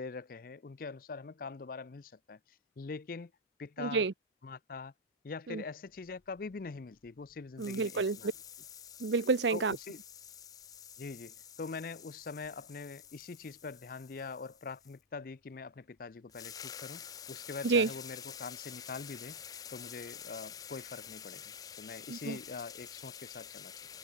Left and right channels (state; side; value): normal; both; correlation -0.04